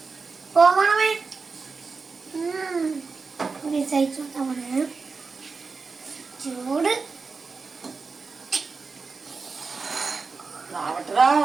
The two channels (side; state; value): left; quieter; 4.5 dB